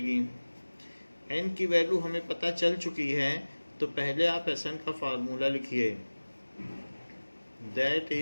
n की वैल्यू हमें पता चल चुकी है, तो पहले आप Sn का फार्मूला लिखिए। दैट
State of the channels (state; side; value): inverted; both; correlation -1.00